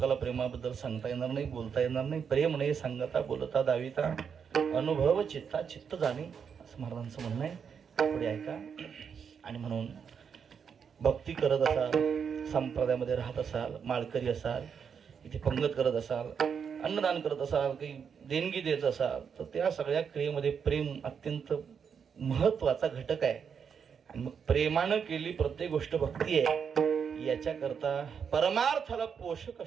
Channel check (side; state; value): left; quieter; 6.9 dB